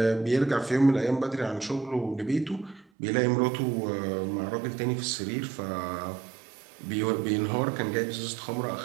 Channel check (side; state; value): left; drops out; at 2.9 s